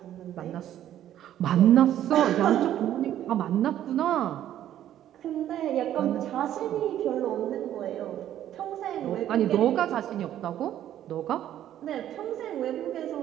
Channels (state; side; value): quieter; left; 11.6 dB